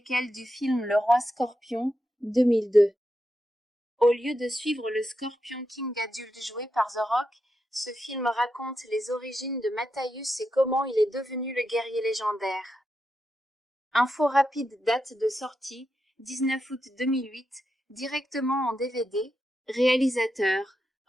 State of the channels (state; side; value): normal; both; correlation 0.86